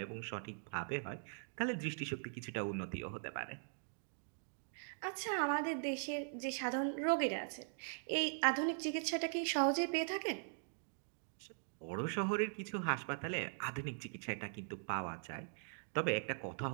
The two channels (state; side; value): silent; left; digital silence